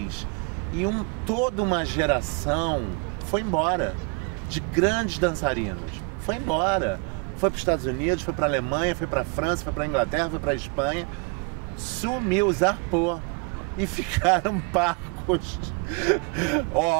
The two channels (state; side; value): quieter; left; 32.3 dB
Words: E toda uma geração foi embora, de grandes dançarinos. Foi embora. Foi para os Estados Unidos, foi para a Alemanha, foi para a França, foi para a Inglaterra, foi para a Espanha. Sumiu, zarpou. E ficaram parcos únicos,